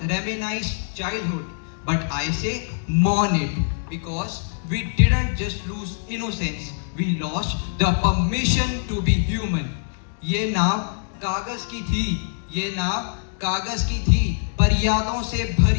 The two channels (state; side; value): silent; right; digital silence